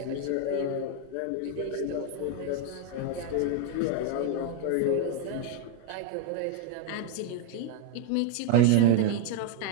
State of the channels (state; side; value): different; both; correlation 0.01